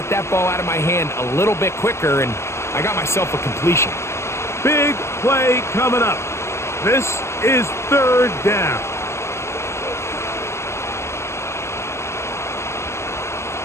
that ball out of my hand a little bit quicker, and I got myself a completion. Big play coming up. This is third down.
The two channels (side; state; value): right; late; 0.13 ms